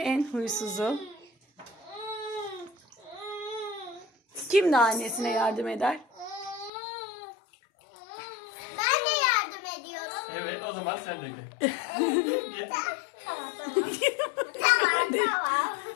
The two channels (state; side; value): drops out; right; at 6.7 s